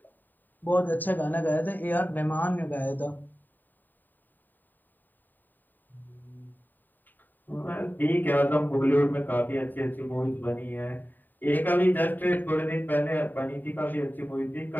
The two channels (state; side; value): late; right; 0.089 ms